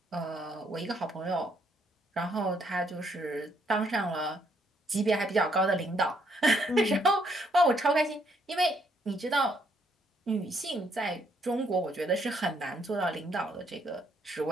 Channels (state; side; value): normal; both; correlation 0.71